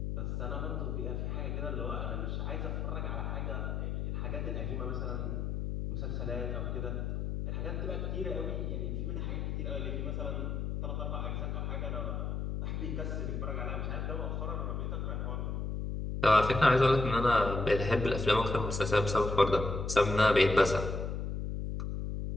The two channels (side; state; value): left; noise; hum, 2 dB below the sound